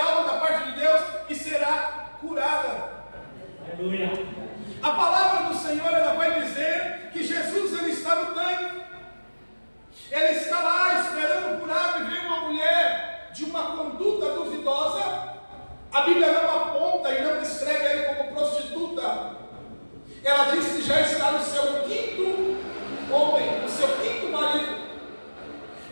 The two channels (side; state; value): both; inverted; correlation -1.00